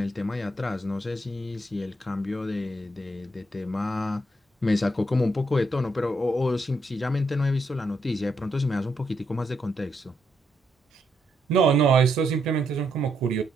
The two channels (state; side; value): normal; both; correlation 0.77